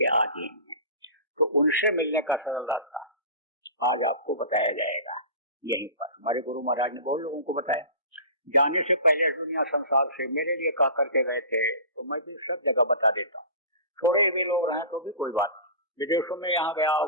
अधीन है। तो उनसे मिलने का आज आपको बताया जाएगा यहीं पर। हमारे गुरु महाराज ने बहुत लोगों को बताया, जाने से पहले दुनिया संसार से मेरे लिए कहा करके गए थे, तो मैं भी सब जगह बता देता हूँ। थोड़े भी लोग रहें तो भी कोई बात नहीं। विदेशों में यहाँ गया,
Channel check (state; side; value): inverted; both; correlation -0.35